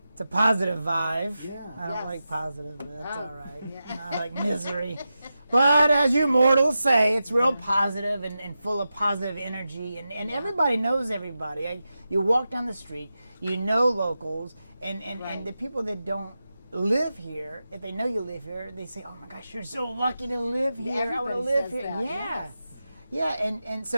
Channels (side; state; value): both; inverted; correlation -0.91